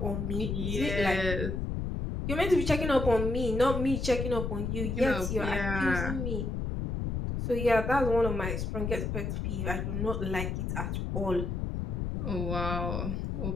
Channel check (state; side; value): noise; left; rumble, 2 dB below the sound